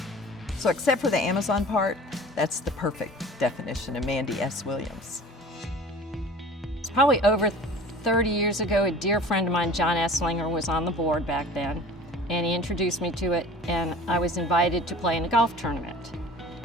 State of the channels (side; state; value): both; normal; correlation 0.43